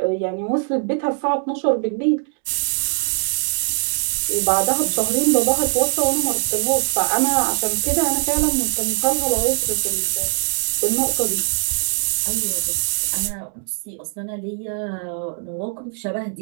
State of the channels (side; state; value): left; silent; 57 dB below the other